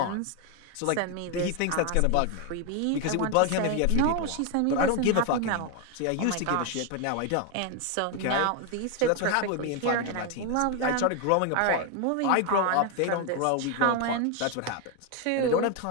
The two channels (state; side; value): different; both; correlation 0.01